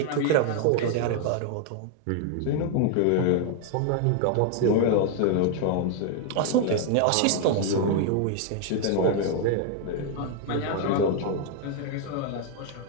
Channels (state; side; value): different; both; correlation 0.00